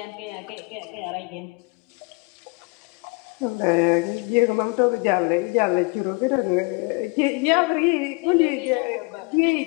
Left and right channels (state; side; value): quieter; right; 29.3 dB